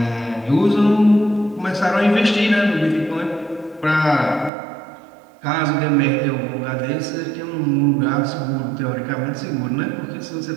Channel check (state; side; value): drops out; left; at 4.5 s